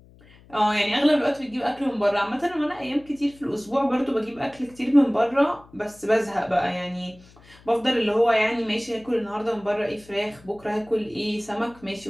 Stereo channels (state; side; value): noise; left; hum, 25 dB below the sound